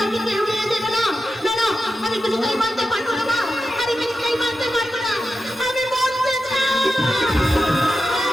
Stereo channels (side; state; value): both; normal; correlation 0.90